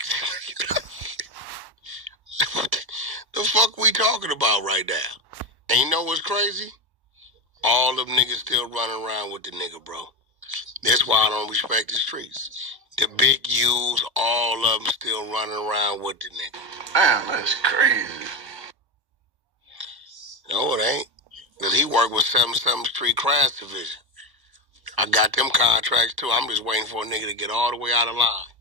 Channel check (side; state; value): left; late; 1.0 ms